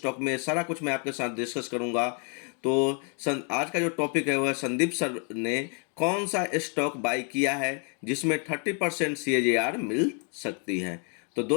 में, सारा कुछ मैं आपके साथ डिस्कस करूंगा। तो आज का जो टॉपिक है वो है संदीप सर ने कौन सा स्टॉक बाई किया है जिसमें 30% CAGR मिल सकती है। तो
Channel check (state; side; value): quieter; right; 39.4 dB